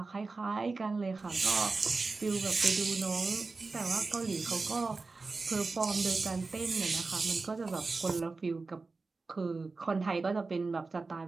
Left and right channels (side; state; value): left; quieter; 3.9 dB